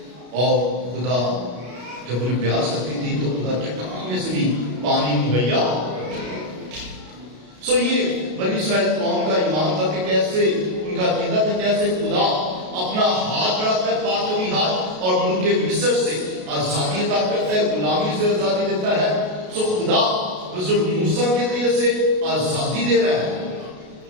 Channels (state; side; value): late; left; 33 ms